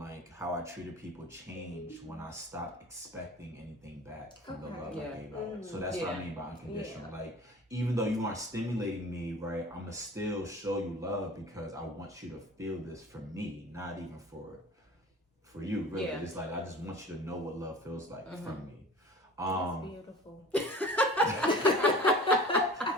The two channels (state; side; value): normal; both; correlation 0.41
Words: how I treated people changed when I stopped expecting anything back from the love I gave out. So that's what I mean by unconditional. Like even though you aren't stimulating me, right, I'm gonna still show you love because I want you to feel this for me, not even for you, really. It's like I just want you to know what love feels like from me. That's beautiful.